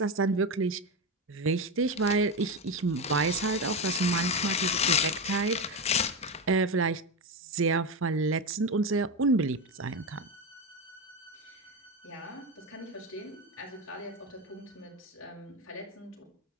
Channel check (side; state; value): both; normal; correlation 0.15